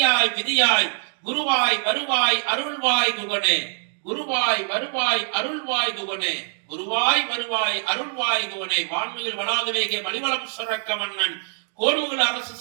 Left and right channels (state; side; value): silent; left; 57 dB below the other